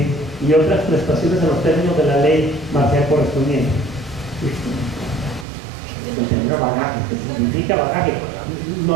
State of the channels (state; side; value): drops out; left; at 5.5 s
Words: y otras prestaciones en los términos de la ley marcial correspondiente. El término bagaje, que significa bagaje.